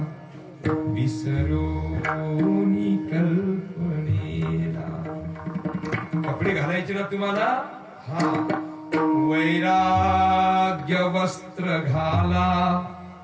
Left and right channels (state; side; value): identical; both; correlation 1.00